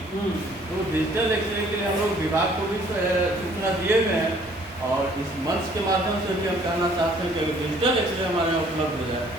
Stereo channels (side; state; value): both; normal; correlation 0.59